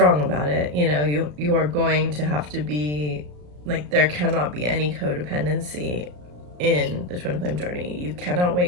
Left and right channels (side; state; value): left; late; 34 ms